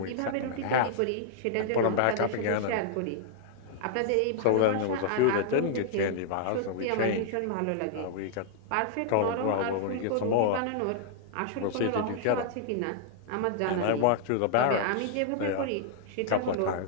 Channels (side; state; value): both; different; correlation -0.01